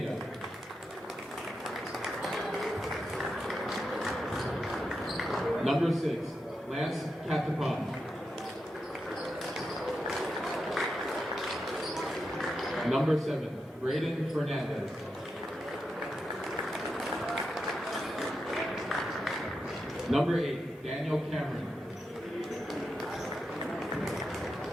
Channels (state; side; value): normal; both; correlation 0.87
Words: Number 6, Lance Catapon. Number 7, Braden Fernandez. Number 8, Daniel Cameron.